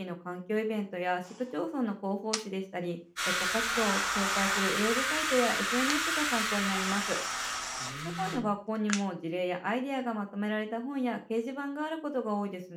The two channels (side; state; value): both; identical; correlation 1.00